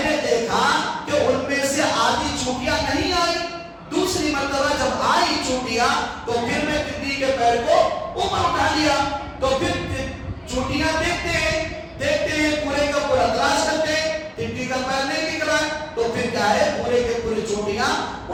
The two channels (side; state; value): both; identical; correlation 1.00